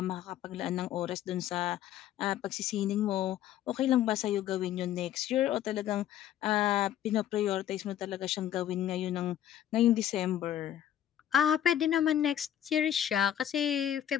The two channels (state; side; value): quieter; right; 11.1 dB